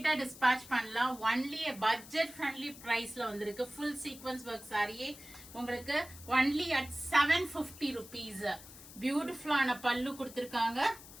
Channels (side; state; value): left; noise; hiss, 17 dB below the sound